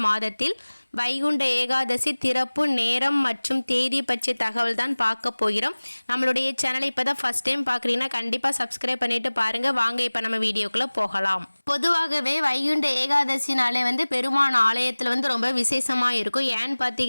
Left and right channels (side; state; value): both; inverted; correlation -1.00